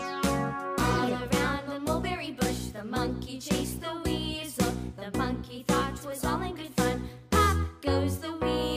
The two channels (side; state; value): both; identical; correlation 1.00